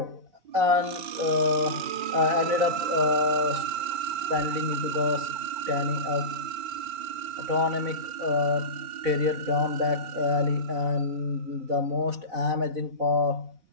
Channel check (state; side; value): late; left; 4.1 ms